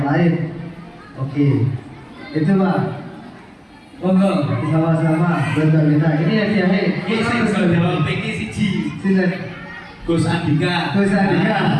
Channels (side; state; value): both; identical; correlation 1.00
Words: lain? Oke, itu Pak. Monggo sama-sama buat kita. Ini ya dia. Ini sing bisa jawab iki siji. Silakan. Gus Andika. Gus Andika.